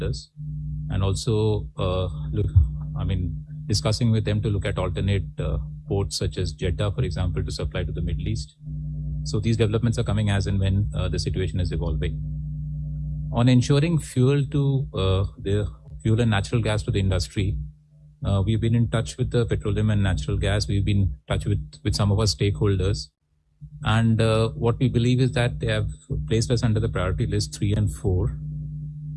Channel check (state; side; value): identical; both; correlation 1.00